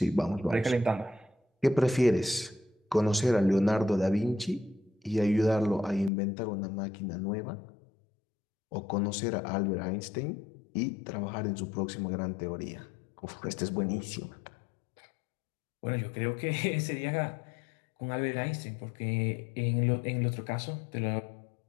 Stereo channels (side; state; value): right; drops out; at 6.1 s